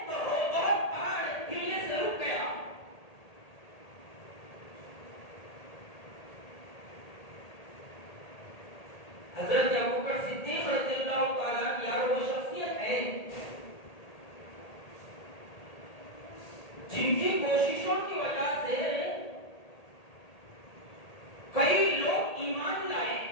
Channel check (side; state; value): right; late; 1.8 ms